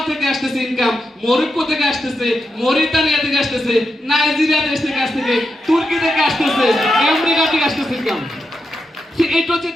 থেকে আসতেছে ইনকাম, মরক্কো থেকে আসতেছে, মরিতানিয়া থেকে আসতেছে, নাইজেরিয়া দেশ থেকে আসতেছে, তুর্কি থেকে আসতেছে, আমেরিকা থেকে আসতেছে ইনকাম। এটা হচ্ছে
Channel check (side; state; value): both; normal; correlation 0.86